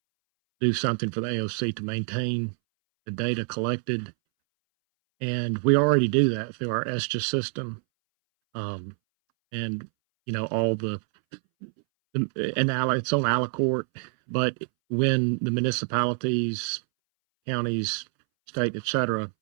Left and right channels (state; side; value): silent; left; 61 dB below the other